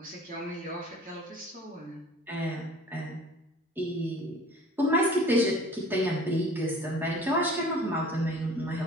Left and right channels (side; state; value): both; normal; correlation 0.46